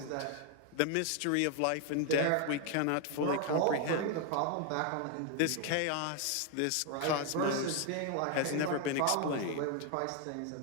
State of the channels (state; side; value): different; both; correlation 0.01